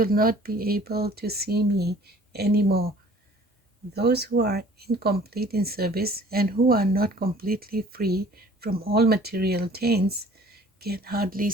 will not be able to see me anymore. Those who are incomplete in service and who are not completely free from all material taints can hardly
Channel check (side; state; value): both; normal; correlation 0.52